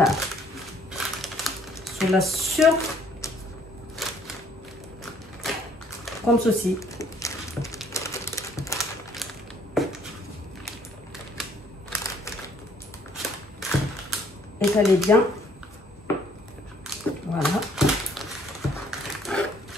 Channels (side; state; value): both; normal; correlation 0.63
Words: Sur la comme ceci. Étalez bien. Voilà.